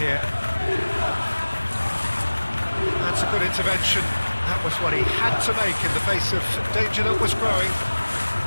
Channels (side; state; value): both; inverted; correlation -1.00